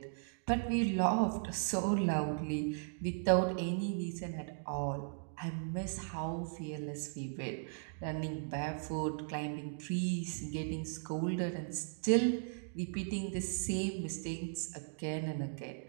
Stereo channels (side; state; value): left; silent; digital silence